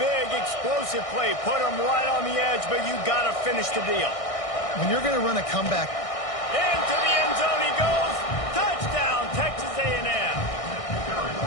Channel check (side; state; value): right; late; 1.6 ms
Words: explosive play put him right on the edge, but you got to finish the deal. When you're going to run a comeback. Into the end zone he goes. Touchdown, Texas A&M.